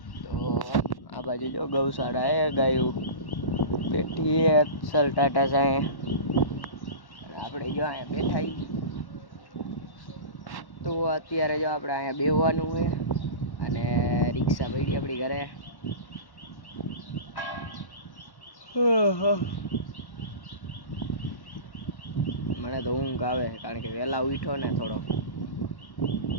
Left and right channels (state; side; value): late; right; 1.1 ms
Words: તો આ બાજુ જો ગૌશાળા હે, ગાયું બેઠી હે સલ ટાટા સાંઈ, આપણે જો અહીંયા બેઠા હી। તો અત્યારે જો આપણે અહીંયા બેહવાનું છે અને રિક્ષા પડી આપણી ઘરે। મને તો ઊંઘ આવે કારણ કે વહેલા ઉઠ્યો ને થોડો।